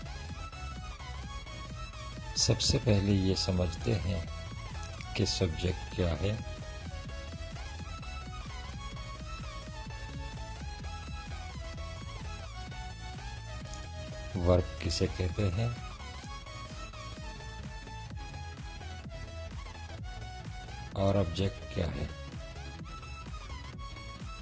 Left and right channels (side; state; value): both; identical; correlation 1.00